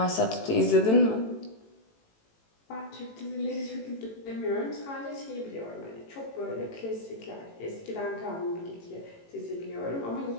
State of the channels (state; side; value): late; right; 18 ms